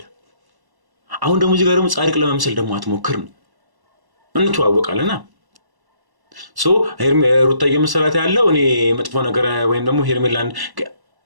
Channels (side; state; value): left; late; 1.1 ms